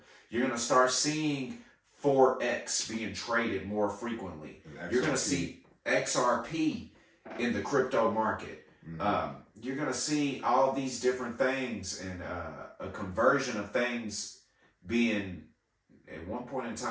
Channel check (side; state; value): both; identical; correlation 1.00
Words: You're going to start seeing Forex being traded more frequently. You're going to see XRP in the crypto market. You're going to see all these different things and a conversion of things being, at one point in